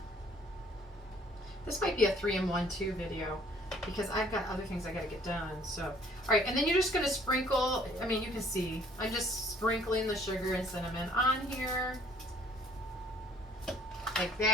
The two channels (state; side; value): normal; both; correlation 0.58